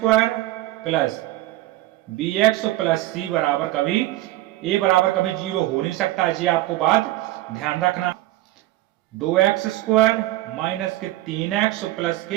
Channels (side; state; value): left; quieter; 16.4 dB